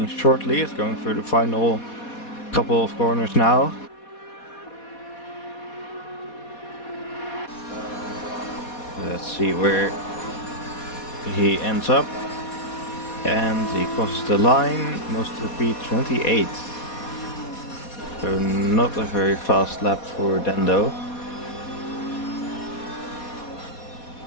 shortly. It's going through the final couple of corners now. Let's see where he ends up. And he crosses the line, moves to P28. So not a very fast lap for Dendo.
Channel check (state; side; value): late; right; 4.2 ms